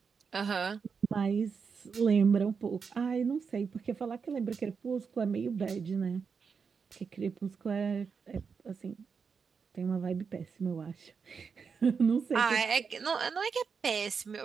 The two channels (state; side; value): quieter; left; 5.8 dB